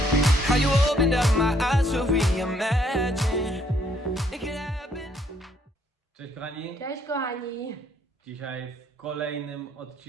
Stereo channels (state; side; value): normal; both; correlation 0.67